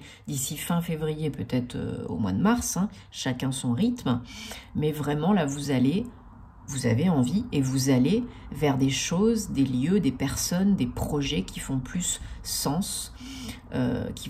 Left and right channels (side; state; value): both; identical; correlation 1.00